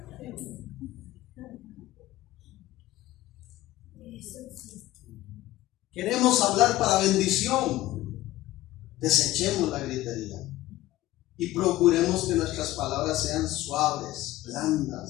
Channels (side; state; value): right; quieter; 16.2 dB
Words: Queremos hablar para bendición. Desechemos la gritería y procuremos que nuestras palabras sean suaves,